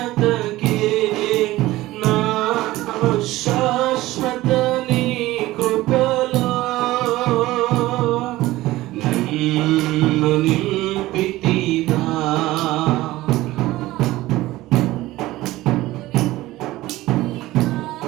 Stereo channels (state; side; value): quieter; left; 17.4 dB